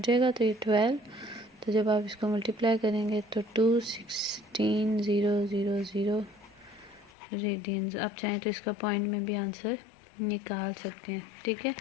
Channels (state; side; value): drops out; right; at 7.1 s